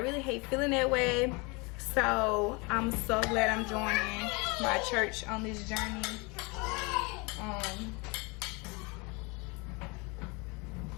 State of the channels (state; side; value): quieter; right; 28.4 dB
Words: hate feeling that way. So I'm so glad I'm joining my church on this journey.